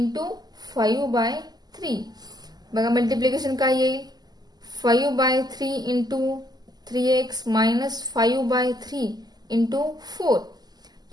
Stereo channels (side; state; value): left; late; 0.20 ms